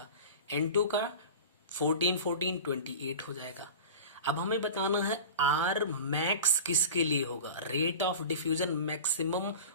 N2 का 14 14 28 हो जाएगा। अब हमें बताना है R मैक्स किसके लिए होगा, रेट ऑफ डिफ्यूजन मैक्सिमम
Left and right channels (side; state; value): both; inverted; correlation -0.34